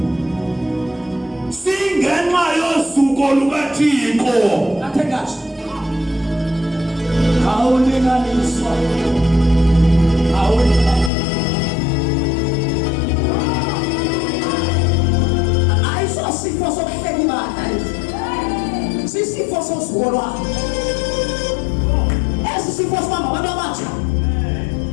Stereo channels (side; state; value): right; drops out; at 11.1 s